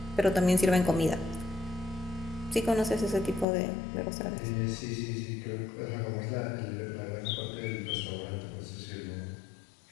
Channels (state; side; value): drops out; right; at 3.5 s